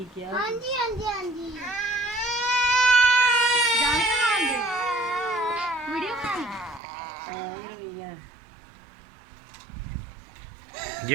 किया। हाँ जी हाँ जी हाँ जी जान के मान दे वीडियो कॉल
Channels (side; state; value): left; drops out; at 6.8 s